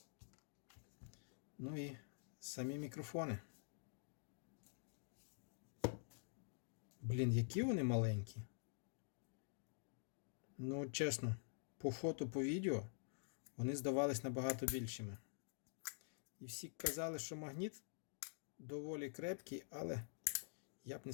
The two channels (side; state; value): right; silent; digital silence